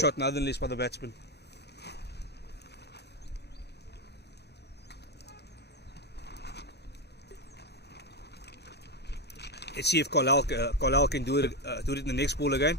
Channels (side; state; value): both; normal; correlation 0.10